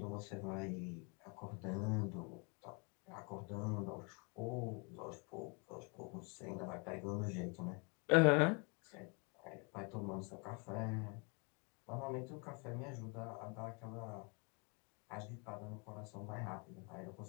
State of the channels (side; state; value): right; quieter; 33.0 dB